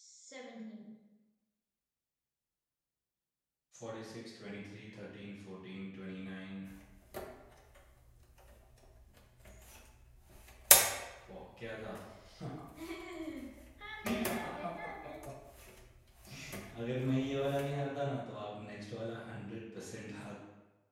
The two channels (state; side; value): identical; both; correlation 1.00